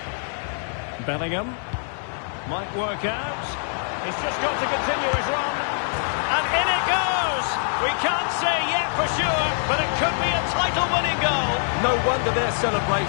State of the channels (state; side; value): silent; right; 63 dB below the other